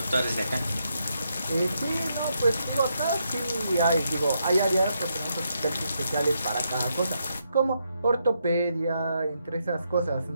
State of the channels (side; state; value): both; inverted; correlation -0.80